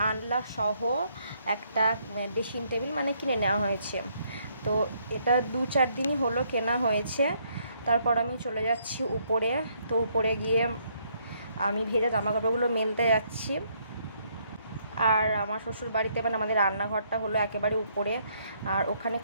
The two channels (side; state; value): both; inverted; correlation -0.71